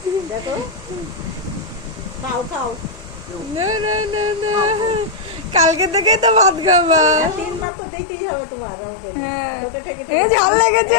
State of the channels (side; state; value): right; drops out; at 7.7 s